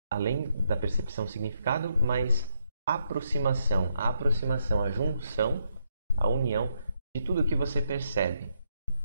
além da percepção, significado, mas aproximação, a junção, a união de tudo que você percebe.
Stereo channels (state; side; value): inverted; both; correlation -0.77